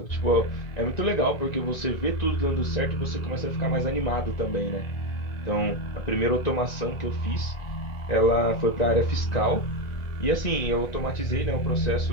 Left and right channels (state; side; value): late; right; 1.9 ms